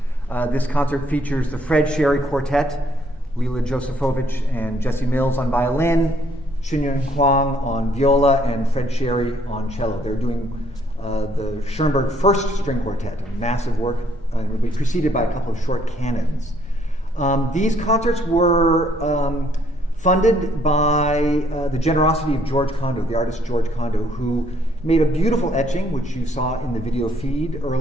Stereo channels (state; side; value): normal; both; correlation 0.65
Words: This concert features the Fred Sherry Quartet, Leila, Josefowicz, and Jesse Mills on violin, Hsin-Yun Huang on viola, and Fred Sherry on cello. They're doing the Schoenberg First String Quartet, a massive work, and will be preceded by a couple of short canons. These concerts were funded by the generosity of George Condo, the artist George Condo, who made a beautiful etching, which you saw in the video feed